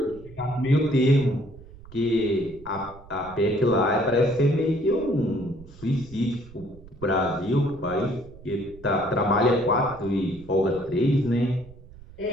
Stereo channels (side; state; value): right; noise; rumble, 19 dB below the sound